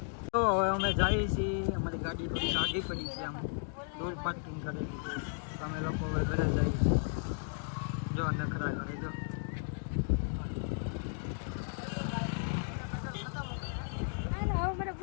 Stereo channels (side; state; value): right; silent; 55 dB below the other